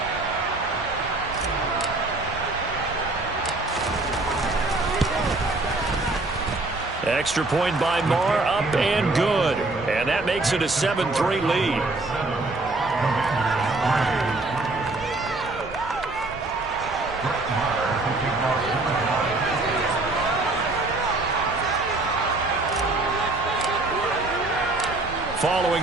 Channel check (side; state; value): left; quieter; 3.1 dB